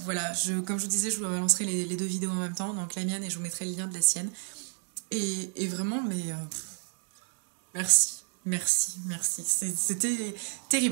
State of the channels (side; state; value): left; silent; 57 dB below the other